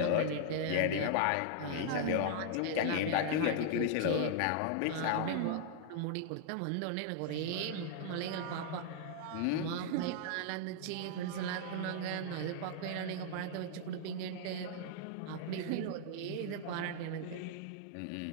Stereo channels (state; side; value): different; both; correlation -0.01